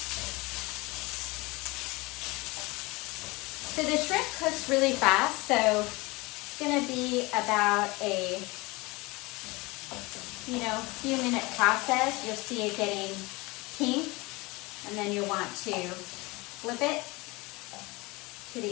So the shrimp cooks really fast, so it's gonna be about a few minute process. You'll see it getting pink, and then you'll want to flip it to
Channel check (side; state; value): right; quieter; 23.9 dB